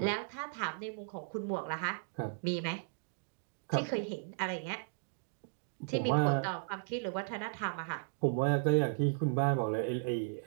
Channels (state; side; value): silent; left; digital silence